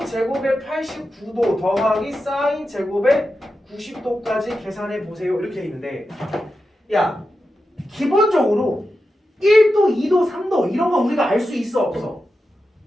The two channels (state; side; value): normal; both; correlation 0.90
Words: 제곱의 89도 더하기 사인 제곱의 90도까지 계산해 보세요. 이렇게 돼 있는데, 야, 기본적으로 1도, 2도, 3도 이런 거 우리가 알 수 있어 없어?